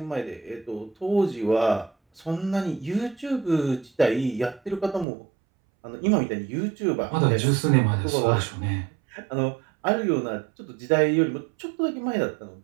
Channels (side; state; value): left; drops out; at 5.1 s